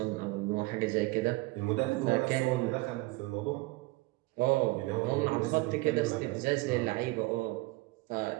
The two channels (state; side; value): quieter; left; 22.0 dB